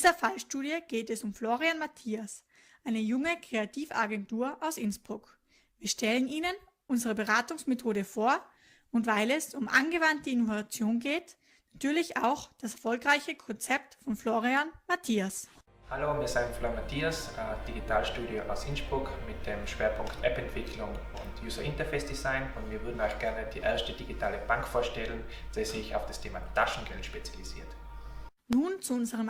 Fallstudie geht es um Florian Matthias, eine junge Kreativagentur aus Innsbruck. Wir stellen Ihnen unsere Beratungsmethode vor und weil es um angewandte Innovation geht, natürlich auch das erfolgreiche Konzept von Florian Matthias. Hallo, wir sind Florian Matthias, Digitalstudio aus Innsbruck mit dem Schwerpunkt App-Entwicklung und User Interface Design und wir würden euch gerne die erste digitale Bank vorstellen, die sich auf das Thema Taschengeld spezialisiert. Nun zu unserem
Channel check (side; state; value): both; identical; correlation 1.00